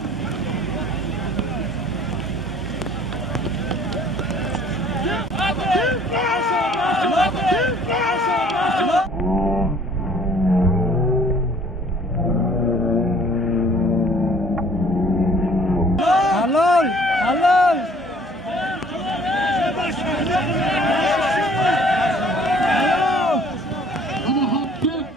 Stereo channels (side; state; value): both; normal; correlation 0.55